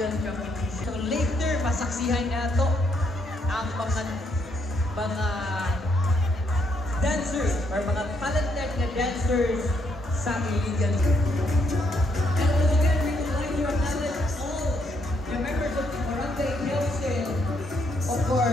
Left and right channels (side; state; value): both; normal; correlation 0.74